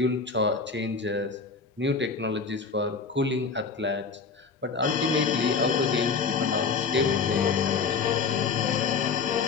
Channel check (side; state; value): right; quieter; 5.1 dB